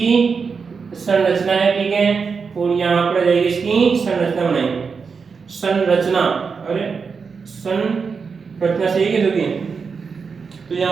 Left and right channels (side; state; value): left; quieter; 5.4 dB